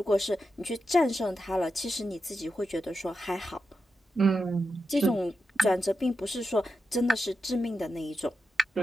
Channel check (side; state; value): both; normal; correlation 0.88